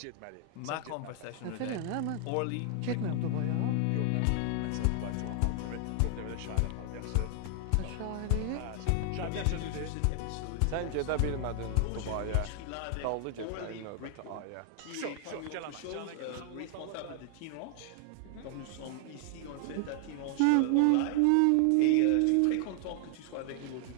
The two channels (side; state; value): both; different; correlation 0.00